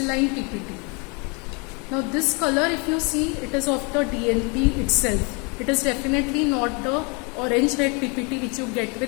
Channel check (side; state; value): right; quieter; 32.1 dB